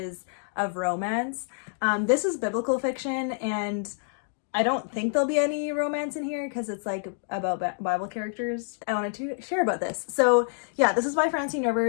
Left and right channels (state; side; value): silent; right; 60 dB below the other